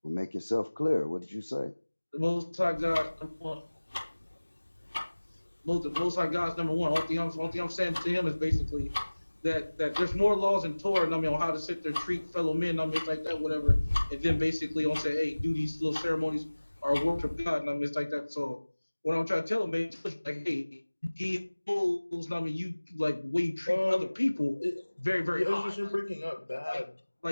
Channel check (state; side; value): inverted; both; correlation -1.00